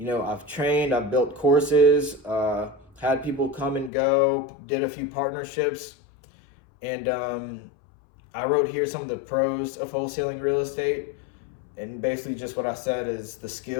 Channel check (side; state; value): right; drops out; at 3.9 s